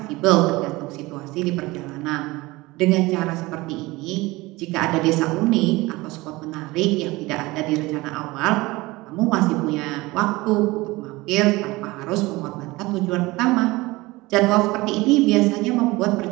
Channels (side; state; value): left; quieter; 21.1 dB